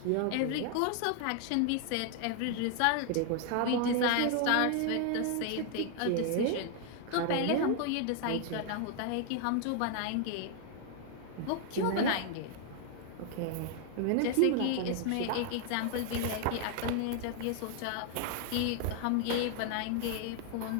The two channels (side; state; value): both; different; correlation 0.00